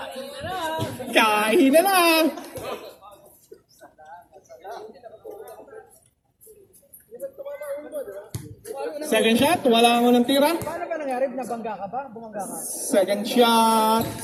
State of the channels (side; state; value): both; identical; correlation 1.00